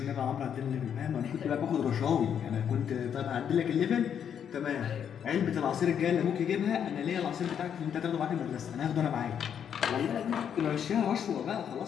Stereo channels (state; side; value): quieter; right; 8.4 dB